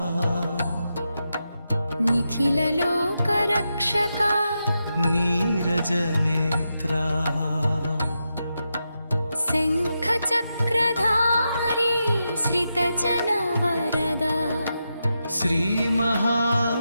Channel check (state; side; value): inverted; both; correlation -0.87